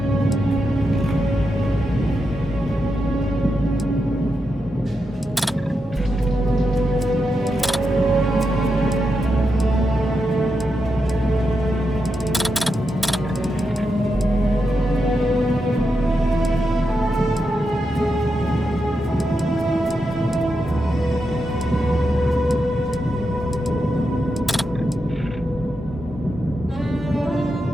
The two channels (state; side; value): normal; both; correlation 0.86